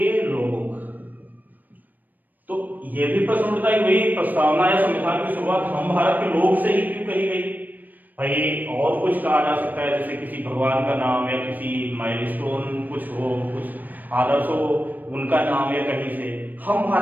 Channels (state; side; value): late; left; 0.086 ms